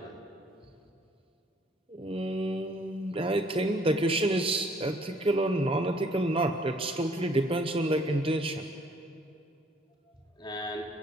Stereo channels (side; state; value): both; normal; correlation 0.60